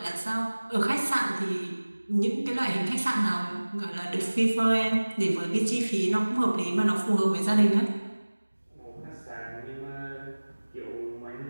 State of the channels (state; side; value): inverted; both; correlation -1.00